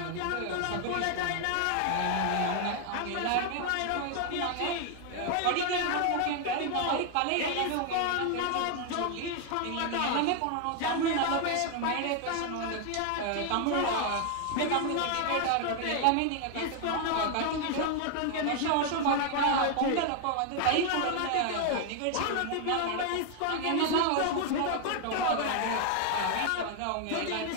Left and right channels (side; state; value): both; different; correlation 0.00